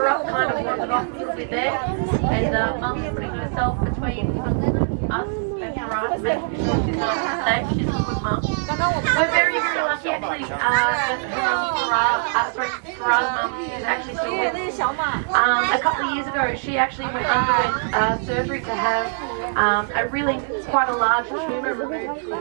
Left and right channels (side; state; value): left; silent; digital silence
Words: kind of walking off a little bit there. And Mum's putting herself between us and Farah to make sure she's nice and safe. She's a good mum. We're very, very lucky actually that Farah's mum is actually still with us. A couple of years ago, she actually went underwent surgery to have a really quite a large tumor removed from